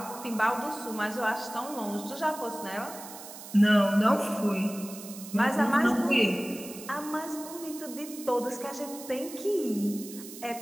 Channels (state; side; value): noise; right; hiss, 14 dB below the sound